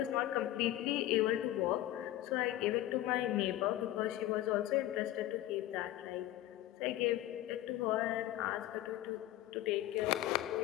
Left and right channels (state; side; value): quieter; right; 14.4 dB